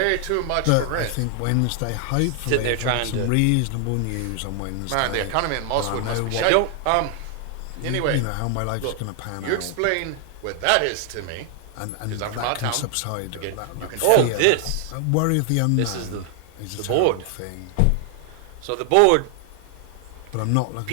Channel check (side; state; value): both; different; correlation 0.00